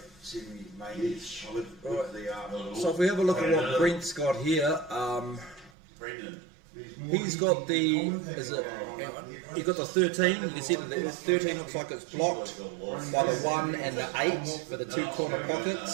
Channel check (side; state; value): left; drops out; at 5.7 s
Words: semi-mains with the So if we have a look at what Brent's got here, he's got the, he's got the 13. You can see that the 13 looks like it's blocked by the 1 and the 8 for the 2 corner